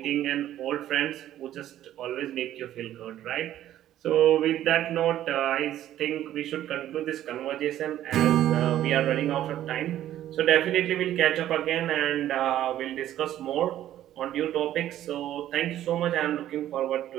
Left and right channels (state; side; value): quieter; left; 12.4 dB